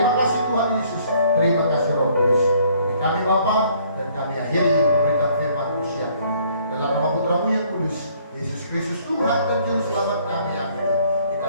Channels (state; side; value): inverted; both; correlation -0.62